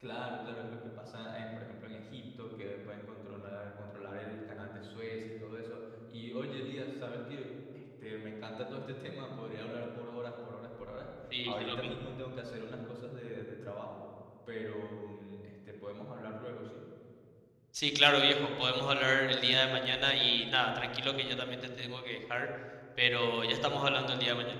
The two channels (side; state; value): both; identical; correlation 1.00